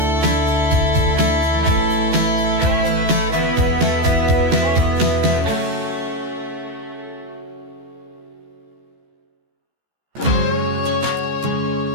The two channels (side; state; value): left; late; 14 ms